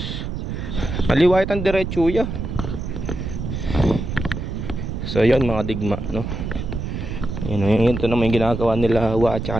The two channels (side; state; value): right; noise; rumble, 5 dB below the sound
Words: Maliwait ang diretso ya. So yun mga digma yun to naman yung ginagawa nila at saka